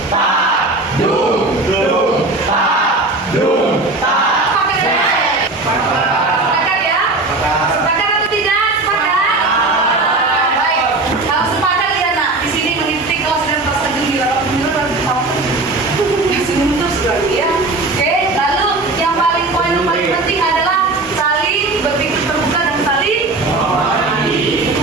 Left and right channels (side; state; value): left; quieter; 3.1 dB